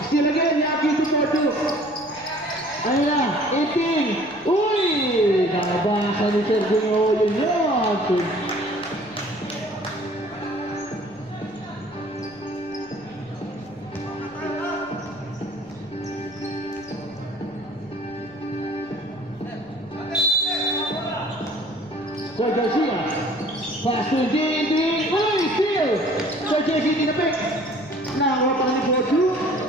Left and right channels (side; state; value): left; noise; rumble, 27 dB below the sound